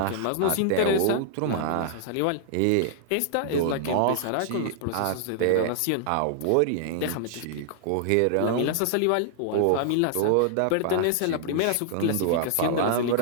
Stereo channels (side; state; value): both; different; correlation -0.01